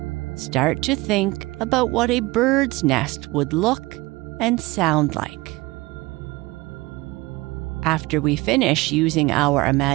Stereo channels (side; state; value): left; quieter; 21.5 dB